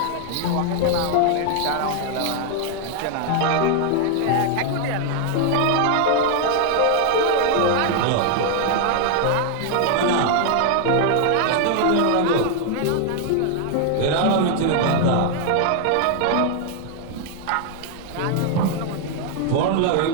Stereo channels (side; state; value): both; different; correlation 0.00